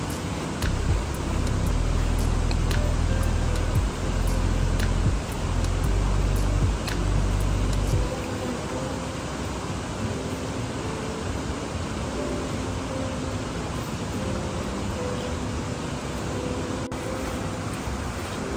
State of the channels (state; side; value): identical; both; correlation 1.00